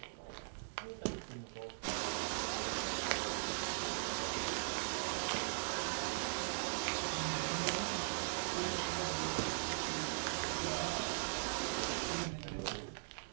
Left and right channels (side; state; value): left; silent; digital silence